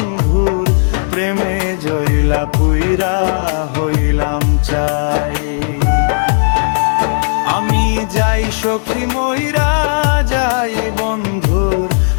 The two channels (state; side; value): silent; right; digital silence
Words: প্রেমে জইলা পুইরা হইলাম চাই। আমি যাই সখী ময়রা যাই, বন্ধুর